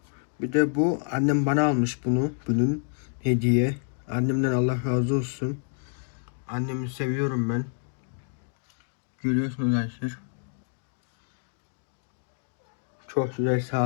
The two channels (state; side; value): silent; right; digital silence